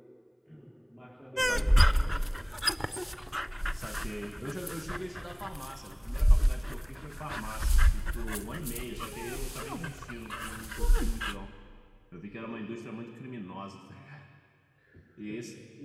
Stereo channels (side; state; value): both; identical; correlation 1.00